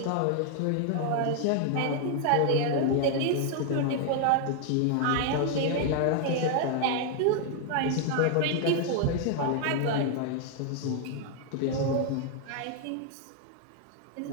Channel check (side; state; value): both; different; correlation 0.00